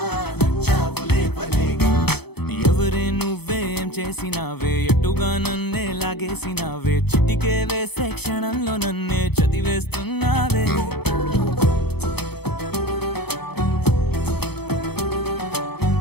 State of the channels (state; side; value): late; right; 0.97 ms